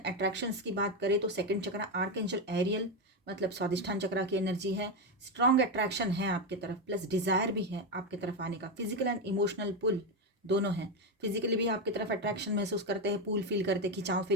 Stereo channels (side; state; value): both; normal; correlation 0.09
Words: अट्रैक्शंस की बात करें तो 2nd चक्रा आर्कएंजल एरियल, मतलब स्वादिष्ठान चक्रा की एनर्जी है। स्ट्रॉन्ग अट्रैक्शन है आपके तरफ, प्लस डिज़ायर भी है आपके तरफ आने का। फिजिकल एंड इमोशनल पुल दोनों हैं, फिजिकली भी आपकी तरफ अट्रैक्शन महसूस करते हैं, पुल फील करते हैं, खिंचाव